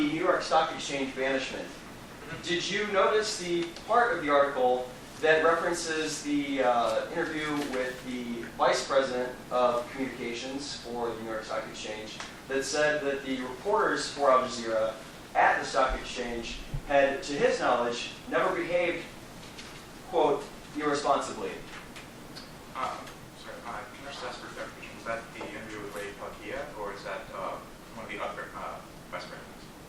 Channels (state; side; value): identical; both; correlation 1.00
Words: New York Stock Exchange banishment, did you notice the part of the article that references the interview with the Vice President of Communications for the New York Stock Exchange that said that the reporters for Al Jazeera at the Stock Exchange had, to his knowledge, never behaved, quote, irresponsibly? Sorry, can I just ask for clarification? Was that the interview with Ray Pakia, or is that one of the other vice